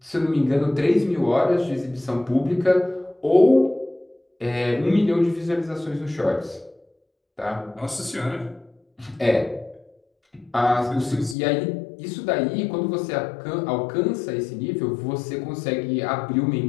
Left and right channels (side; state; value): right; drops out; at 11.4 s